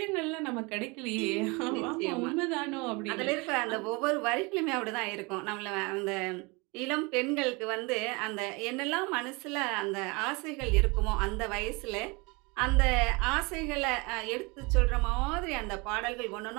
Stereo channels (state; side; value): quieter; left; 27.4 dB